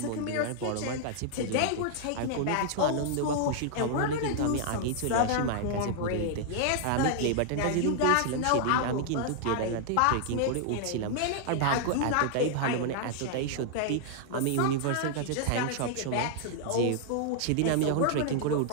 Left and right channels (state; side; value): different; both; correlation 0.00